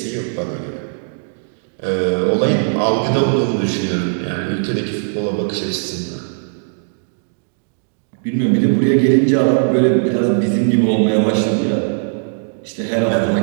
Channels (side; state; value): left; silent; 66 dB below the other